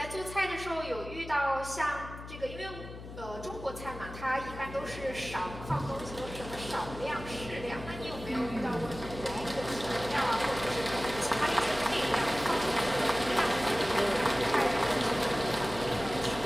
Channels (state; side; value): noise; left; hum, 12 dB below the sound